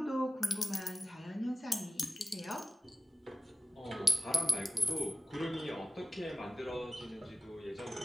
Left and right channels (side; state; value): both; normal; correlation 0.96